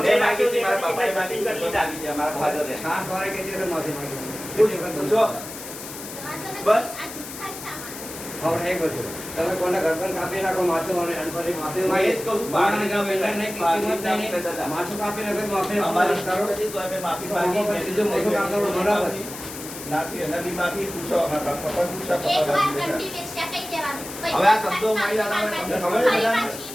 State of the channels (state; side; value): noise; left; hiss, 11 dB below the sound